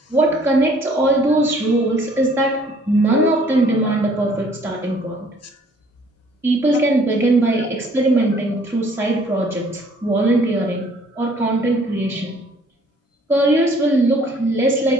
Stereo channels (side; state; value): both; normal; correlation 0.59